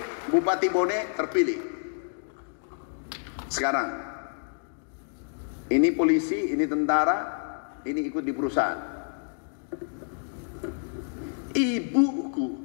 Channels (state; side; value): silent; right; digital silence